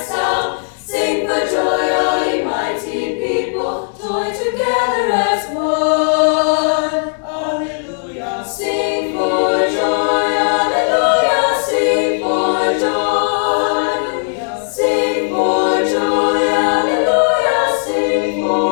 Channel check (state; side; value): silent; right; digital silence